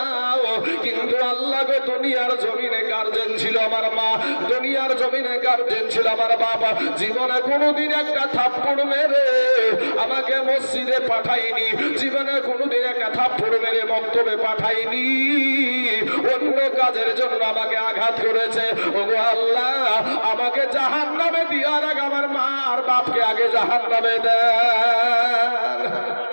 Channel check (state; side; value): inverted; both; correlation -1.00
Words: কিন্তু আল্লাহ গো দুনিয়ার জমিনে গার্জেন ছিল আমার মা, দুনিয়ার জমিনে গার্জেন ছিল আমার বাবা, জীবনে কোনোদিন একটা থাপ্পড় মেরে আমাকে মসজিদে পাঠাইনি, জীবনে কোনোদিন একটা থাপ্পড় মেরে মক্তবে পাঠাইনি, অন্য কাজের জন্য আমাকে আঘাত করেছে। ওগো আল্লাহ আমাকে জাহান্নামে দেওয়ার আগে আমার মা আর বাপকে আগে জাহান্নামে দেন।